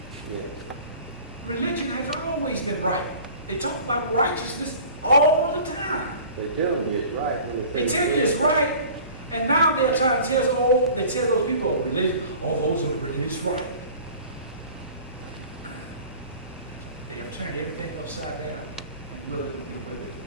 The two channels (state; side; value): inverted; both; correlation -0.43